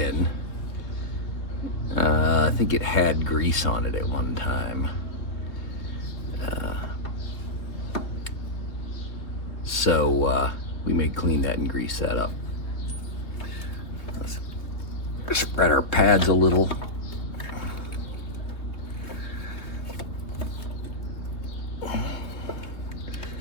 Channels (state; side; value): late; right; 3.1 ms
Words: I think it had grease on it at one time. So we may clean that and grease that up. Let's spread our pads a little.